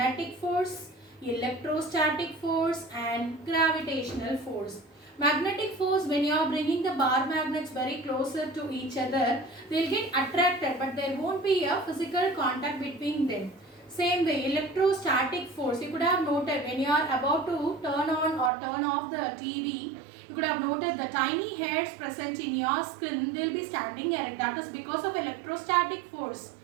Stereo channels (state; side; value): drops out; left; at 18.5 s